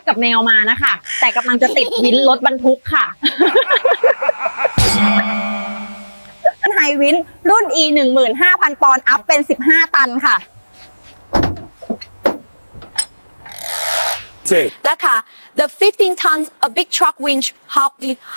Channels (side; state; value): both; inverted; correlation -1.00